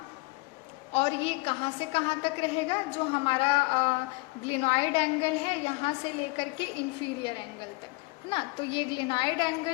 और ये कहाँ से कहाँ तक रहेगा, जो हमारा ग्लिनॉइड एंगल है यहाँ से लेकर के इंफीरियर एंगल तक, है ना। तो ये ग्लिनॉइड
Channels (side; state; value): right; quieter; 25.6 dB